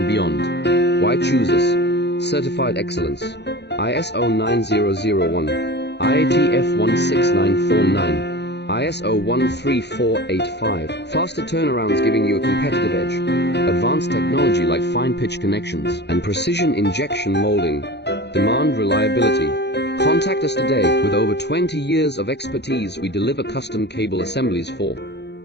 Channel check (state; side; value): late; right; 0.50 ms